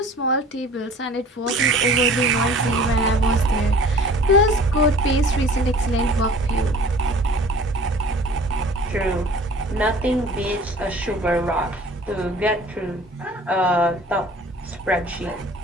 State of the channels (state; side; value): normal; both; correlation 0.47